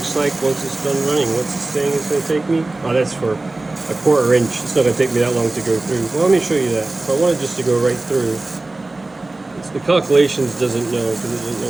like once it's done running. What's it saying it's going to take me? Oh, that's for a 1/4 inch. It's not going to take me that long to go through. Well, let me show you that. If I wanted just to go right through, the calculations doesn't know, because it doesn't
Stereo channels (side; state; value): left; quieter; 3.1 dB